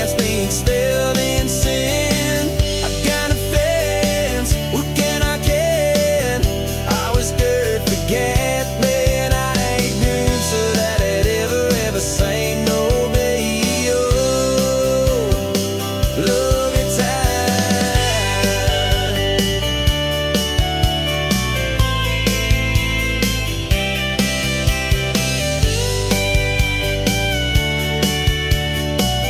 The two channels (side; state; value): both; identical; correlation 1.00